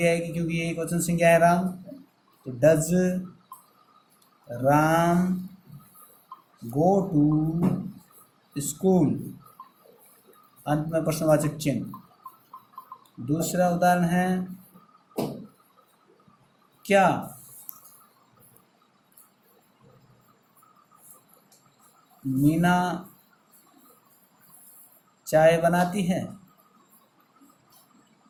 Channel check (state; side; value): identical; both; correlation 1.00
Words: आएगी क्योंकि ये एक वचन संज्ञा है राम, तो does Ram go to school, अंत में प्रश्नवाचक चिन्ह। दूसरा उदाहरण है क्या मीना चाय बनाती है,